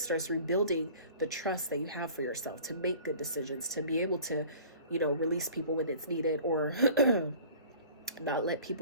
rebuilding the trust that you have for yourself to make good decisions, to be able to, you know, release people when it's needed, or not let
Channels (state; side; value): inverted; both; correlation -0.46